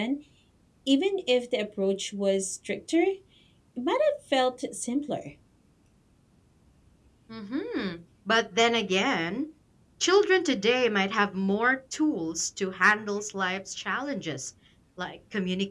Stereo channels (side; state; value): both; identical; correlation 1.00